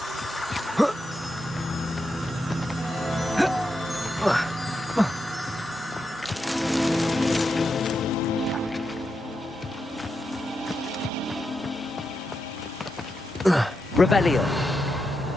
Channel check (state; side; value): normal; both; correlation 0.86